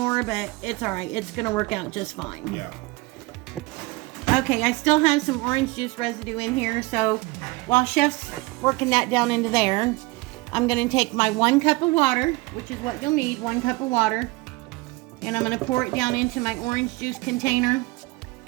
but it's all right. It's going to work out just fine. Yeah. Okay, I still have some orange juice residue in here, so while Chef's working that down into there, I'm going to take my 1 cup of water, which is what you'll need, 1 cup of water, and I'm going to pour it down into my orange juice container.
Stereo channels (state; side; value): quieter; left; 23.0 dB